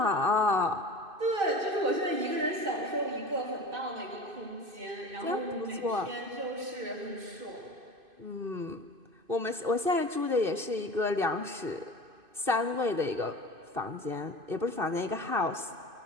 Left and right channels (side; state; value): left; late; 2.5 ms